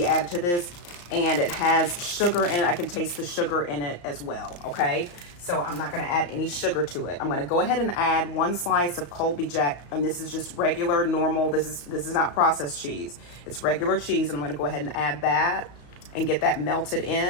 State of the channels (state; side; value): late; right; 34 ms